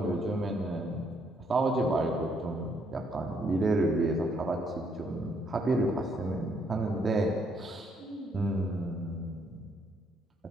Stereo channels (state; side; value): normal; both; correlation 0.71